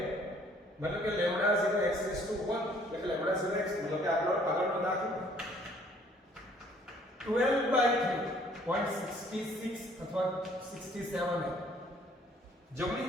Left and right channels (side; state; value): both; normal; correlation 0.59